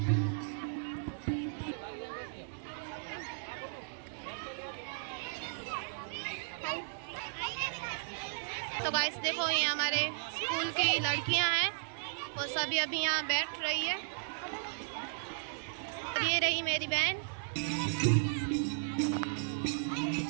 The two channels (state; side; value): silent; left; digital silence